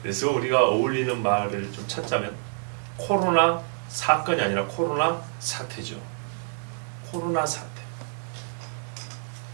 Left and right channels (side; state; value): left; silent; 60 dB below the other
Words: 그래서 우리가 어울리는 말을 좀 찾자면 코로나 사건이 아니라 코로나 사태죠. 코로나 사태.